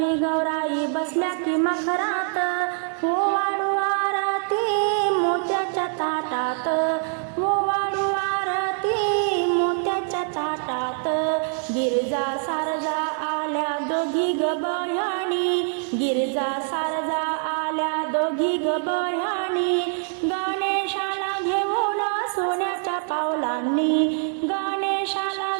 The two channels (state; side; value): silent; left; 57 dB below the other